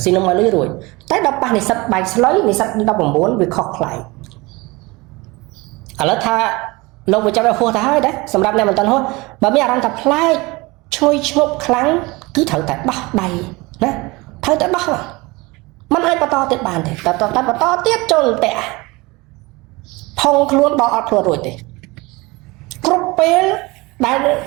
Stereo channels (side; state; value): left; quieter; 23.6 dB